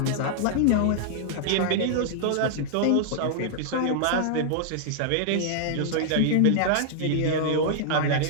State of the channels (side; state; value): both; different; correlation -0.01